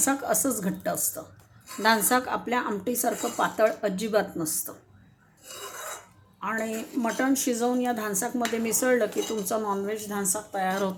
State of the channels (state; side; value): identical; both; correlation 1.00